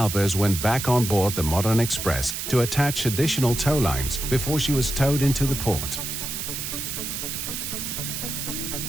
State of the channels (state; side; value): noise; right; hiss, 5 dB below the sound